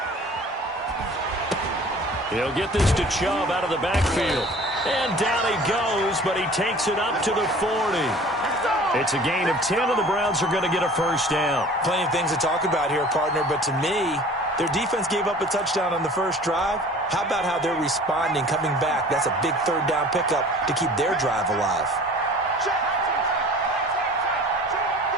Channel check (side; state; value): both; normal; correlation 0.46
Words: He'll get this to Chubb out of the backfield. And down he goes, but he takes it up to the 40. It's a gain of 10, and the Browns are going to get a first down. Plenty of things to talk about here, partner, but to me, their defense gave up a touchdown on the first drive. How about how they're responding, coming back? That's a big 3rd down pickup to keep their drive alive.